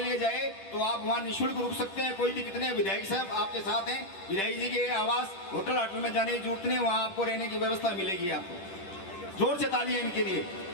लिए जाए तो आप वहाँ निःशुल्क रुक सकते हैं, कोई दिक्कत नहीं है। विधायक साहब आपके साथ हैं, विधायक जी के आवास होटल में जाने की जरूरत नहीं, वहाँ आपको रहने की व्यवस्था मिलेगी। आपको जोर से तालियां इनके लिए,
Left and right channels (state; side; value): late; right; 10 ms